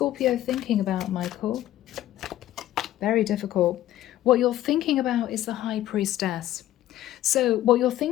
thinking about, Michael? Very difficult. What you're thinking about is the High Priestess. So what you're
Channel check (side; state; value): right; quieter; 13.6 dB